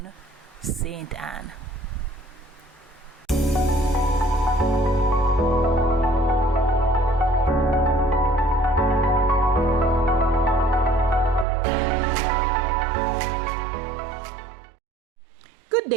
St. Ann. Good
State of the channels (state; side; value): drops out; left; at 11.5 s